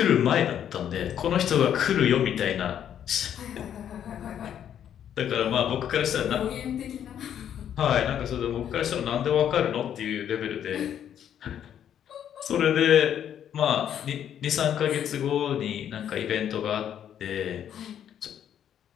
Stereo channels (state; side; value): quieter; right; 9.6 dB